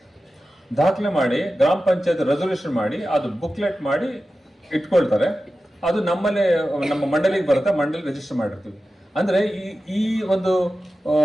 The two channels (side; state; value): both; normal; correlation 0.93